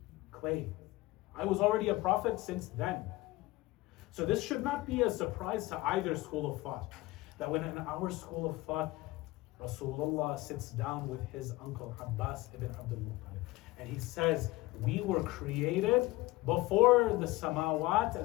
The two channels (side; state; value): right; quieter; 19.9 dB